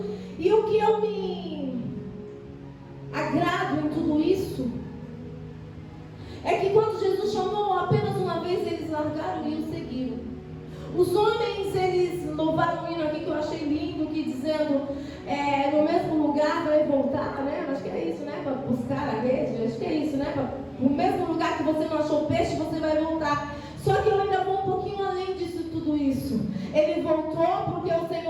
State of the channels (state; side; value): identical; both; correlation 1.00